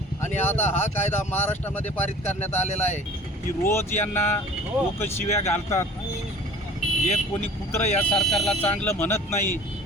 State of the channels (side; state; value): both; normal; correlation 0.45